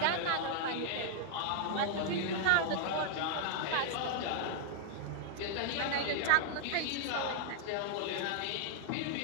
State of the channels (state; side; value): different; both; correlation -0.01